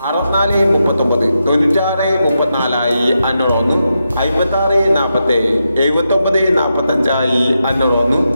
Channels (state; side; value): inverted; both; correlation -0.86